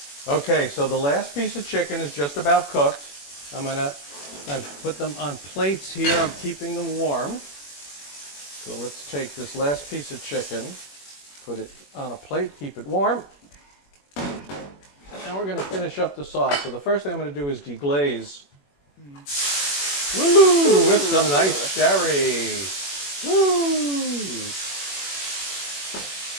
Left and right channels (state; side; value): late; right; 21 ms